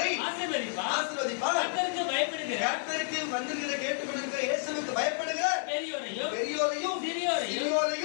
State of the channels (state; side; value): silent; right; digital silence